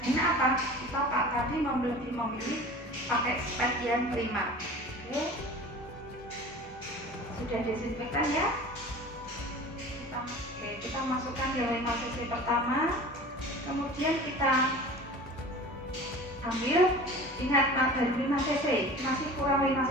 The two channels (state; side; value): normal; both; correlation 0.39